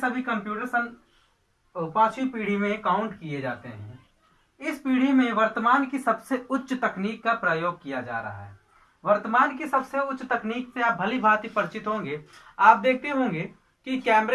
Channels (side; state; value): both; identical; correlation 1.00